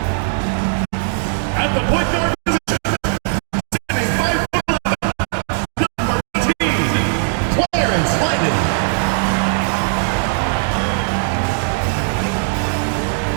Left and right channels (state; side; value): silent; left; digital silence